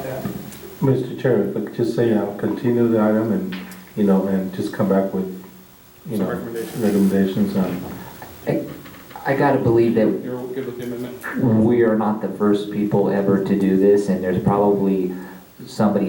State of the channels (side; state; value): both; identical; correlation 1.00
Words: that. Mr. Chair, if I could just say, continue the item and, and just come back with, recommendations on. I gotta believe that You're good with the amendment? we are not the first people ever to do this, and there's probably